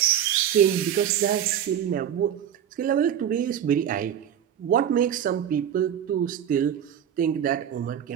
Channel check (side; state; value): left; quieter; 9.6 dB